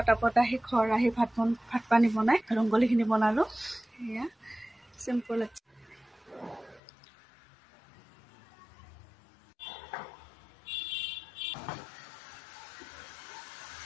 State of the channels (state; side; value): drops out; right; at 6.8 s